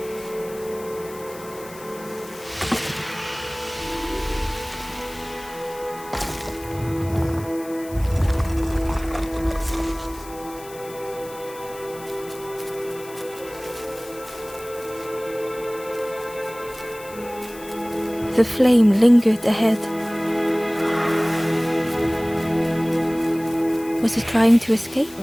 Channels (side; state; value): left; noise; hiss, 18 dB below the sound